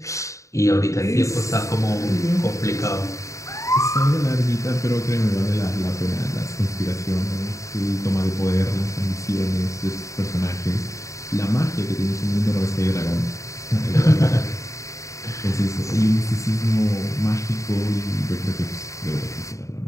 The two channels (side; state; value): right; late; 0.15 ms